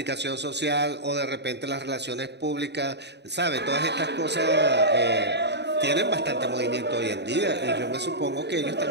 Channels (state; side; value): late; left; 0.50 ms